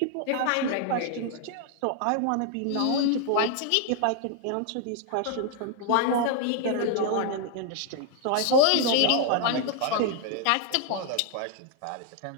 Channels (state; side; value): different; both; correlation 0.00